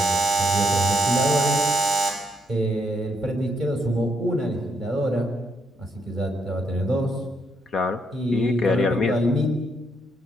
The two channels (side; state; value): both; normal; correlation 0.75